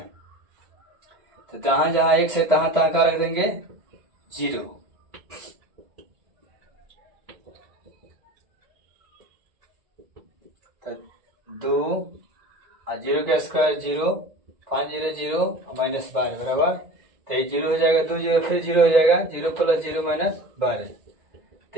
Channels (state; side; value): late; left; 2.0 ms